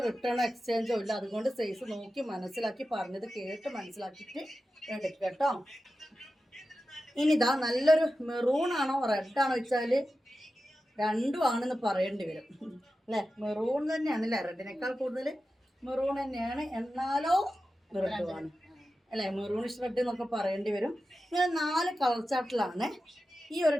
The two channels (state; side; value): normal; both; correlation 0.92